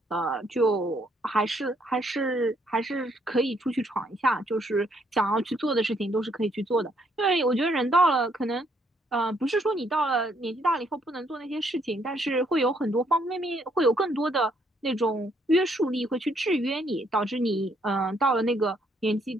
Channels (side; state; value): both; normal; correlation 0.70